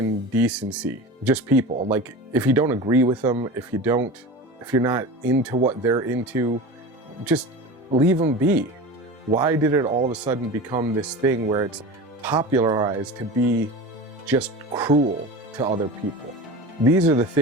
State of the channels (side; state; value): both; normal; correlation 0.31